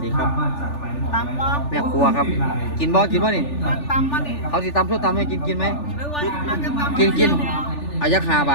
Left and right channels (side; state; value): right; late; 3.4 ms